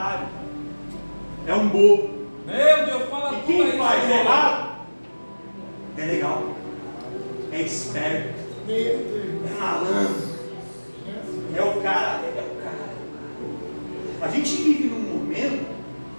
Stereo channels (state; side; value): inverted; both; correlation -1.00